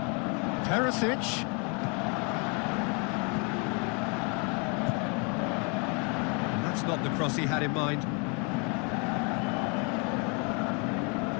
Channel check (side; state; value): right; quieter; 34.0 dB